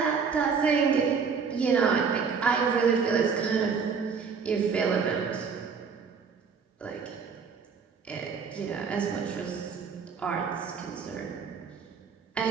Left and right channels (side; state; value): left; quieter; 5.8 dB